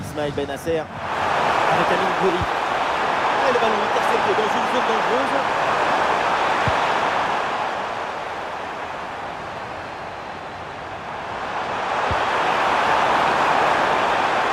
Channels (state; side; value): identical; both; correlation 1.00